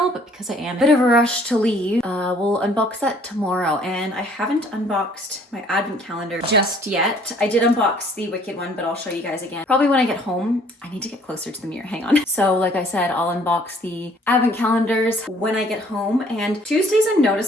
but because I am in a bit of a rush to leave, we'll unbox that tomorrow. And I haven't unboxed my advent calendar just yet. I did unbox the Wicked one, but I'll show you guys again. Probably when I get home. I need to get closer to the mirror, hang on. So like I said, I'll unbox the advent calendars when I get home. And Tuesdays I'm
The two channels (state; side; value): normal; both; correlation 0.59